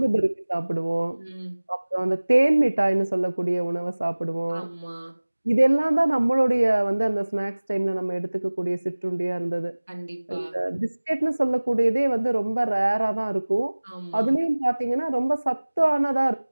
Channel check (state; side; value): inverted; both; correlation -1.00